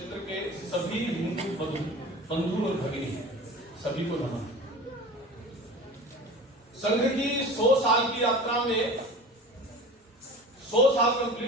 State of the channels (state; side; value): normal; both; correlation 0.37